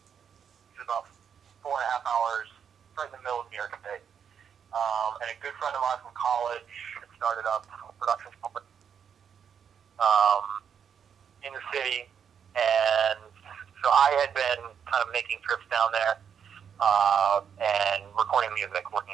which is about 4.5 hours right in the middle of New York State. And a good friend of mine from college had started up a production company in the city, and so I had been kind of making trips down there and recording music, working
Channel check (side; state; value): left; quieter; 7.6 dB